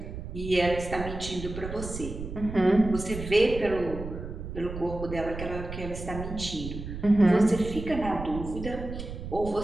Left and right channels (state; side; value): noise; right; rumble, 8 dB below the sound